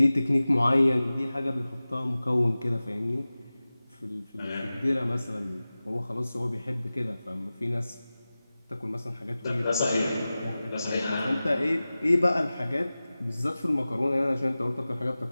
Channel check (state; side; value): inverted; both; correlation -0.97